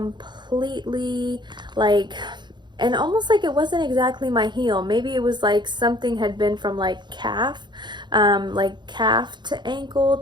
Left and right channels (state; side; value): late; left; 0.22 ms